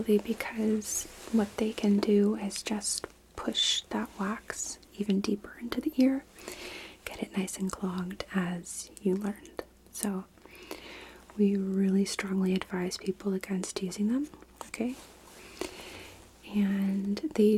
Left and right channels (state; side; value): identical; both; correlation 1.00